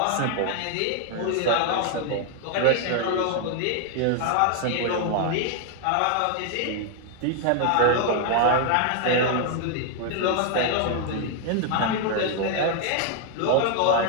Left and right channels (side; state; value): both; different; correlation 0.00